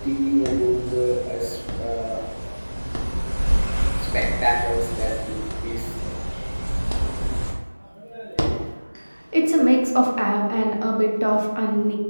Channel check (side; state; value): both; inverted; correlation -1.00